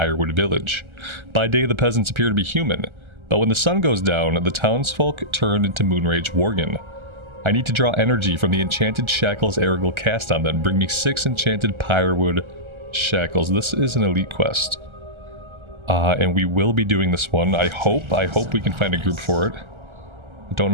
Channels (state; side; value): late; left; 1.3 ms